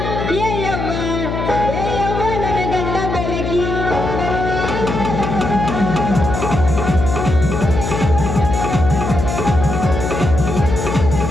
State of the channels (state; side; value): noise; left; hum, 3 dB below the sound